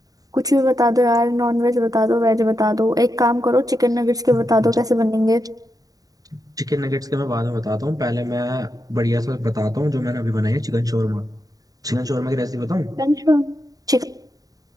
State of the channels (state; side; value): late; left; 0.18 ms